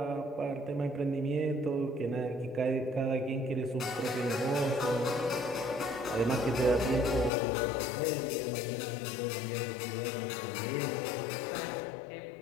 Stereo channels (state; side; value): drops out; right; at 7.3 s